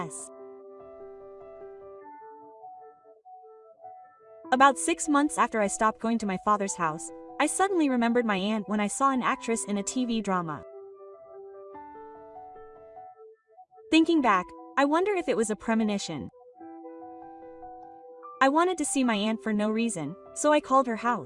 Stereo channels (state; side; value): identical; both; correlation 1.00